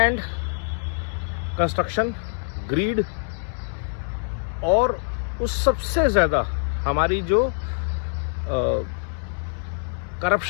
कंस्ट्रक्शन, ग्रीड और उस सबसे ज़्यादा हमारी जो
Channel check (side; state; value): right; silent; 62 dB below the other